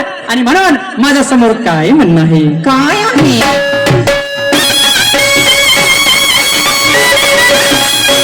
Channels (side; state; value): both; identical; correlation 1.00